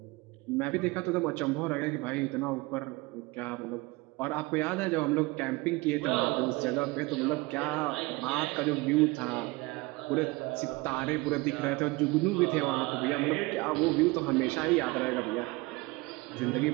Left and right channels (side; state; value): left; quieter; 23.6 dB